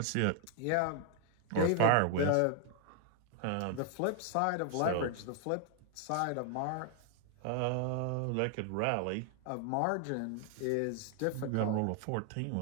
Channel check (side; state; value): both; different; correlation 0.00